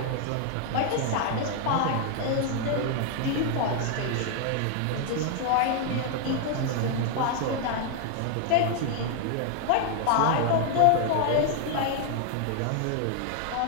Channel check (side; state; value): both; different; correlation 0.00